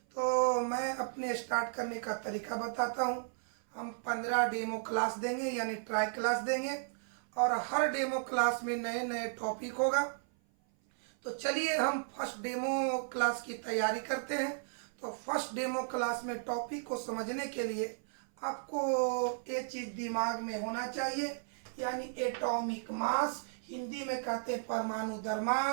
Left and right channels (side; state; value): left; silent; 55 dB below the other